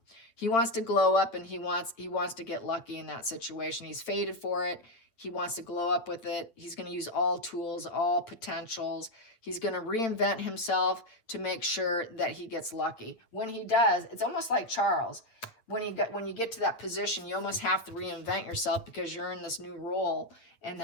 He wants to glow up, and he wants to get lucky in that situation. He's fated for it. He wants to glow up with it. He's going to use all tools, all potentials. He's going to reinvent himself to make sure that he gets lucky. When he does, it's almost like Charles. When you get to that position, you almost have to reinvent yourself because you're in this new role, and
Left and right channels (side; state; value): right; late; 8.8 ms